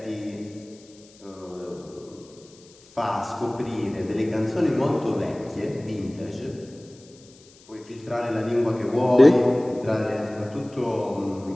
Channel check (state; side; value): noise; left; hiss, 26 dB below the sound